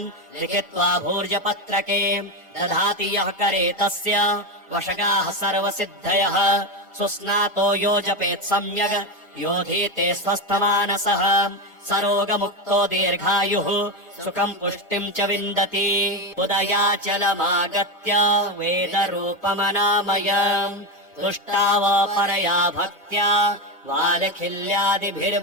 लिखित्वा भूर्जपत्रके दधाति यः करे तस्य वशगाः सर्वसिद्धयः सुस्नातो यो जपेत् सम्यग् योधीते स्वस्थमानसः सरोगमुक्तो दीर्घायुः सुखम् पुष्टिम् च विन्दति उदयाचलमागत्य वेदरूपमनामयम् तुष्टावपरया भक्त्या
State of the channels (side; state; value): both; normal; correlation 0.13